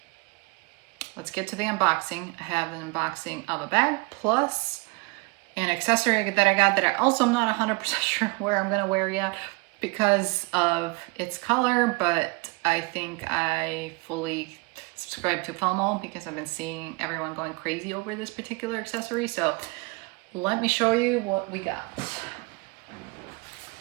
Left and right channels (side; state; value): left; quieter; 27.8 dB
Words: let's get to the unboxing. I have an unboxing of a bag plus an accessory that I got that I also am not 100% sure where I'm gonna wear yet because of its color, but I think I fully subscribe to FOMO because I've been seeing everyone going crazy over this particular accessory. So let me show you what we got.